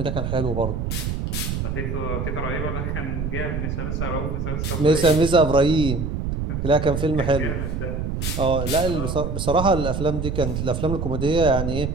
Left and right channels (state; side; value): noise; right; rumble, 2 dB below the sound